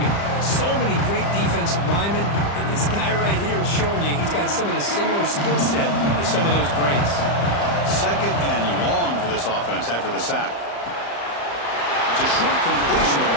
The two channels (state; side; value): late; right; 35 ms